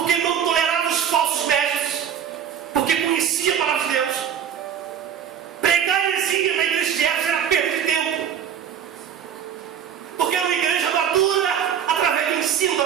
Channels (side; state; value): left; quieter; 8.7 dB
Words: não tolerava os falsos mestres, porque conhecia a palavra de Deus. Pregar heresia na igreja de Éfeso era perda de tempo, porque era uma igreja madura através do ensino da